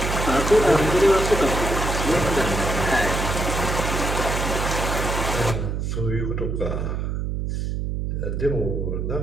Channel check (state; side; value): noise; right; hum, 2 dB below the sound